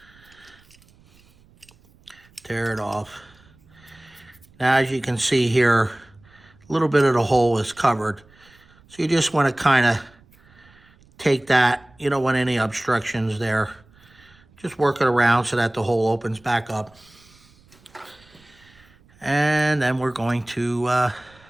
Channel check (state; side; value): noise; right; rumble, 29 dB below the sound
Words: Tear it off. Now, as you can see here, a little bit of the hole is covered. So you just want to kind of take that, you don't want any obstructions there. Just work it around so that the hole opens back up. And then we're going to